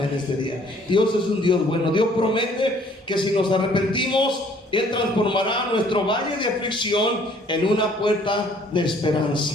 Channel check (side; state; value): both; normal; correlation 0.59